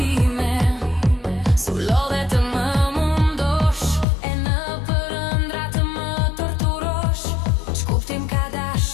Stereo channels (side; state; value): right; drops out; at 4.0 s